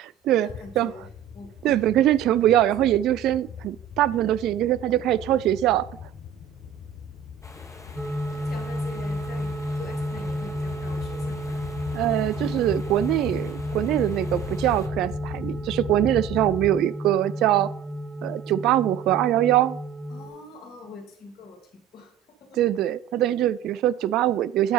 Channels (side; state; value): left; quieter; 9.1 dB